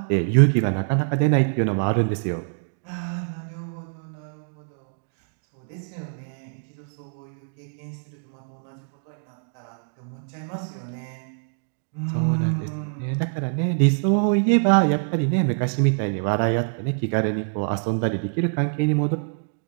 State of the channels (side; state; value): left; silent; digital silence